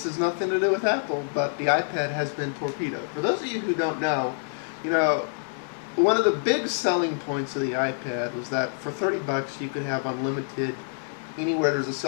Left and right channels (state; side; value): silent; right; digital silence